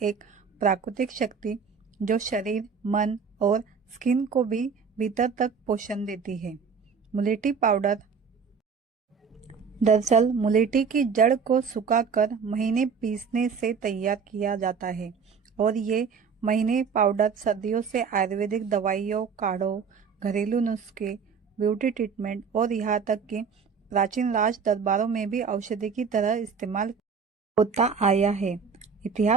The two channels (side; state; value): left; quieter; 5.9 dB